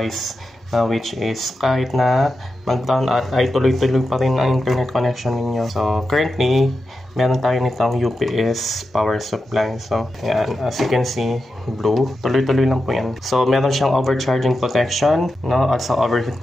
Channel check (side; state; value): both; normal; correlation 0.90